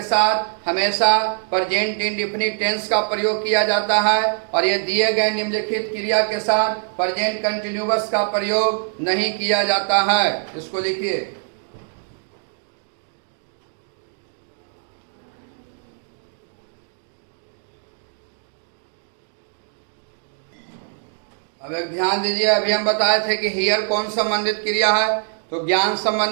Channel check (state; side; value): silent; left; digital silence